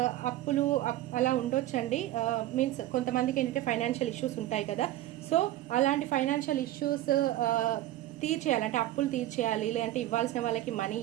అప్పులు అలా ఉండొచ్చండి. మీన్స్ కొంతమందికి ఏంటంటే ఫైనాన్షియల్ ఇష్యూస్ ఉంటాయి కదా. సో అలాంటి ఫైనాన్షియల్ ఇష్యూస్ తీర్చేయాలి, అంటే అప్పులు తీర్చేయాలి, లేదంటే ఇవ్వాల్సిన వాళ్ళకి మనీ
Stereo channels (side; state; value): left; quieter; 14.6 dB